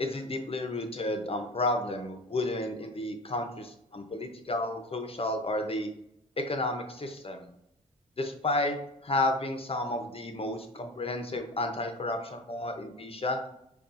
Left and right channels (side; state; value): both; normal; correlation 0.33